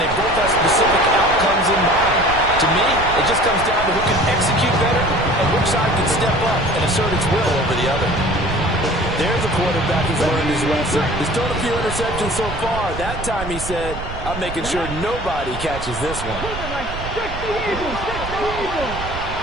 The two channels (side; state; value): right; noise; rumble, 9 dB below the sound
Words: they both have specific outcomes in mind. To me, it just comes down to who can execute better and which side can step up and assert its will over the other. There's a quarterback who's learned his lesson. He's thrown a few interceptions so far. That time he said, I'm making sure nobody catches this one.